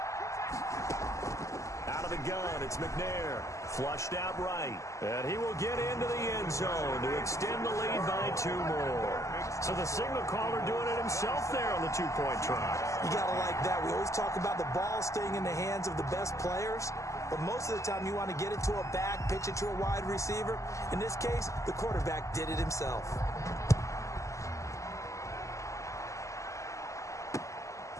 Out of the gun, it's McNair. Flushed out right. And he will get into the end zone to extend the lead by 2 more. So the signal caller doing it himself there on the 2-point try. You got to like that. We always talk about the ball staying in the hands of the best players. But most of the time you want to get it to a back, pitch it to a wide receiver. In this case, the quarterback did it himself.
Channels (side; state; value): right; late; 0.15 ms